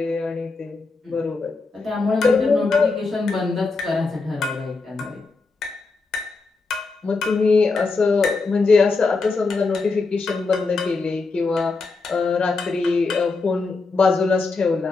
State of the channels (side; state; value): right; quieter; 4.0 dB